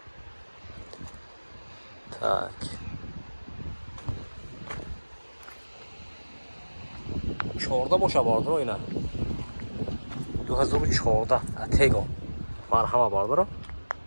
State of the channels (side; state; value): both; inverted; correlation -1.00